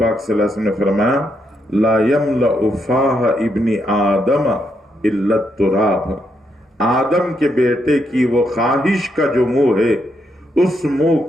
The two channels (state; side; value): normal; both; correlation 0.79